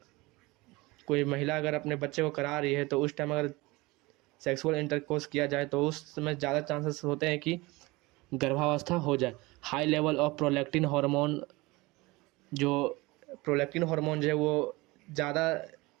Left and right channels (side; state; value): left; quieter; 22.6 dB